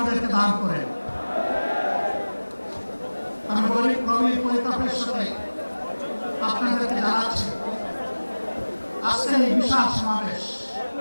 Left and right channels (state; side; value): inverted; both; correlation -1.00